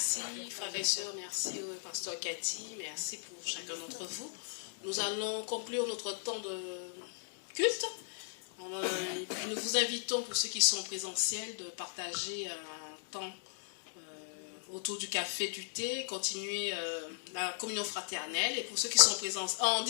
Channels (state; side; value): silent; right; digital silence